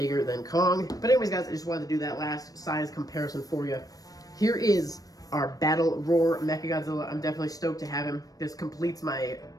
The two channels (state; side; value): late; right; 0.18 ms